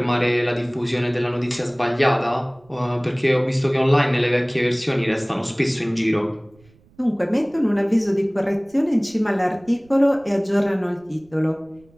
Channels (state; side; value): noise; right; rumble, 30 dB below the sound